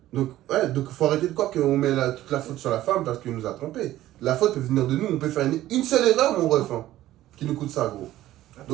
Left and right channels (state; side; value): quieter; left; 14.5 dB